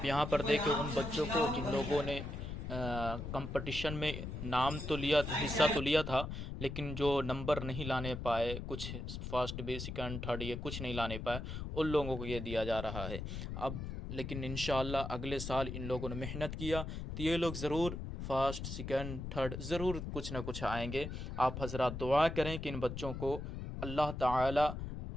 यहाँ पर देखिए उन बच्चों को जिन लोगों ने कंपटीशन में नाम तो लिया, हिस्सा तो लिया था, लेकिन जो नंबर नहीं लाने पाए, कुछ फर्स्ट बी सेकंड थर्ड ये कुछ नहीं लाने पाए, उन लोगों को ये दिया जा रहा है। अब लेकिन इंशाअल्लाह अगले साल इन लोगों ने मेहनत किया तो ये लोग ज़रूर फर्स्ट सेकंड थर्ड ज़रूर कुछ ना कुछ आएंगे। आप हज़रात दुआ करें कि इन बच्चों को अल्लाह ताला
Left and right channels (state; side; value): noise; left; rumble, 6 dB below the sound